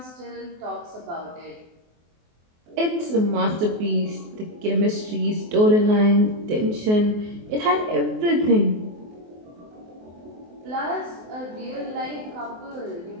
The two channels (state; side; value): late; left; 24 ms